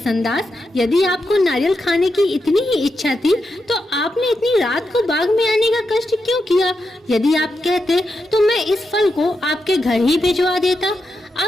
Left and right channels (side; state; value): both; normal; correlation 0.86